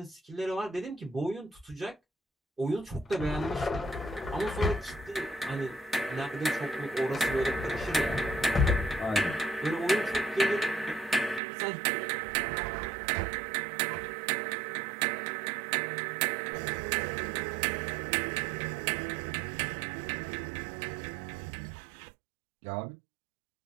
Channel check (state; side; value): drops out; left; at 11.4 s